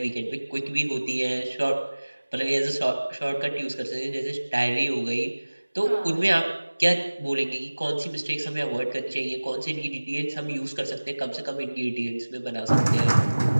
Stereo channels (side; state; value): both; inverted; correlation -1.00